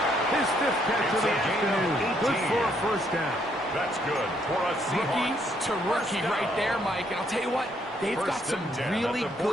His fifth catch of the afternoon. Good for a first down. That's good for a Rookie Seahawks. to rookie right there, Mike. And I'll tell you what, they've got First some and 10 really at the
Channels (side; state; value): both; normal; correlation 0.71